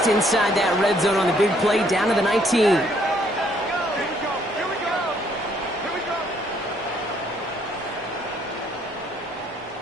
inside that red zone on the big play down to the 19.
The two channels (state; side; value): normal; both; correlation 0.67